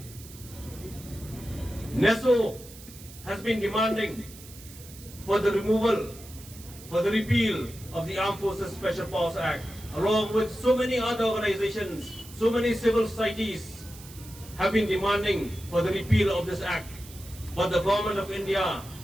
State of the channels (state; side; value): noise; right; hiss, 18 dB below the sound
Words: NESO has been demanding for the removal, for the repeal of the Armed Forces Special Powers Act, along with so many other organizations, so many civil societies have been demanding for the repeal of this act. But the government of India,